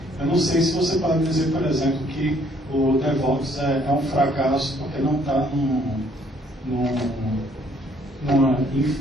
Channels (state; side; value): normal; both; correlation 0.64